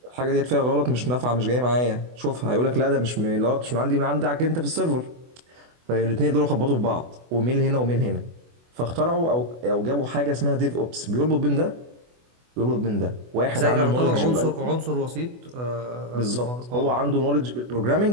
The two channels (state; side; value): late; left; 24 ms